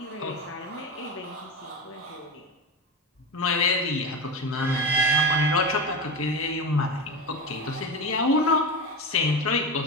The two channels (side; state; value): both; normal; correlation 0.22